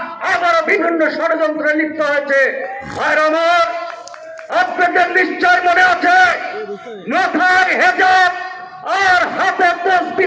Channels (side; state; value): both; identical; correlation 1.00